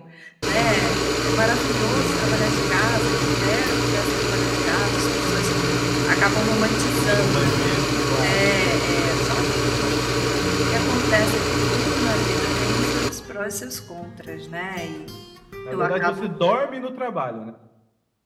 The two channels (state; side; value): identical; both; correlation 1.00